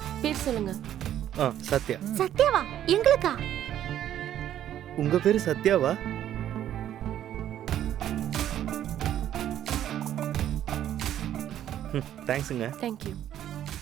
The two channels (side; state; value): left; quieter; 11.2 dB